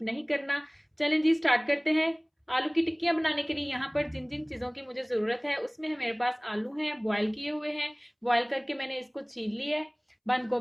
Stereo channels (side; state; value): both; identical; correlation 1.00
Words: नहीं करना। चलें जी, स्टार्ट करते हैं। आलू की टिक्कियाँ बनाने के लिए यहाँ पर जिन जिन चीज़ों की मुझे ज़रूरत है उसमें है मेरे पास आलू हैं, बॉयल किए हुए हैं। बॉयल करके मैंने इसको छील लिया है। बंद